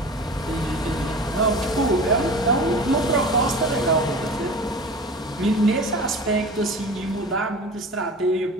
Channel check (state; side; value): normal; both; correlation 0.36